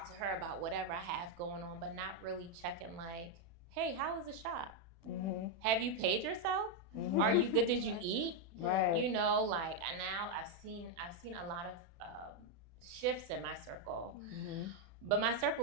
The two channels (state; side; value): late; left; 36 ms